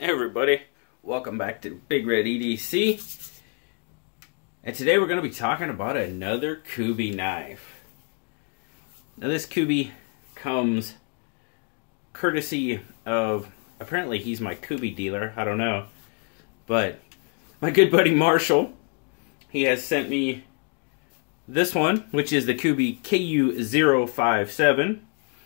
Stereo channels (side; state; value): right; quieter; 39.4 dB